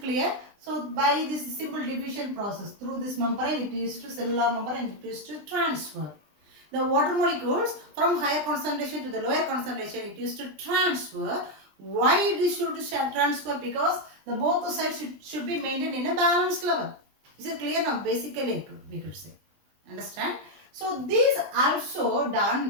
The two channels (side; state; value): left; late; 20 ms